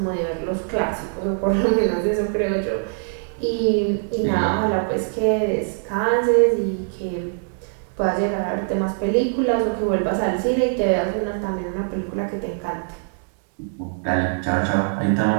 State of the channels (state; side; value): silent; left; digital silence